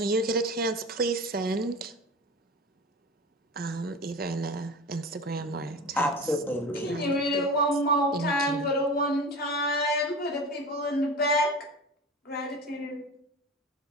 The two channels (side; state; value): both; normal; correlation 0.32